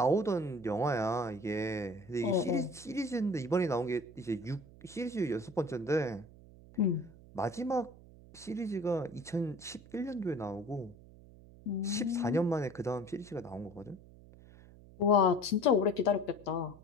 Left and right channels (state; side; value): noise; right; hum, 21 dB below the sound